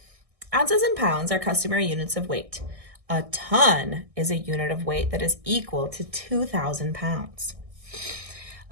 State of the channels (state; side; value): late; left; 1.6 ms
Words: Ounces and pounds are customary units of weight. A ton is a unit of weight that is equal to 2,000 pounds.